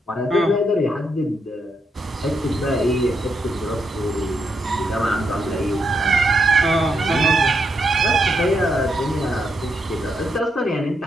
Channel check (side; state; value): both; normal; correlation 0.80